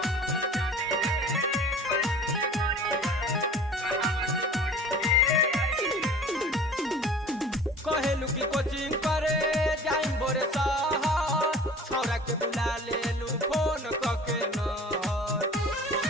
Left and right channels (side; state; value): both; normal; correlation 0.44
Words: कहेलू की कोचिंग करे जाइम बोरे शहर, छौरा के बुला लेलू फोन कके नहर।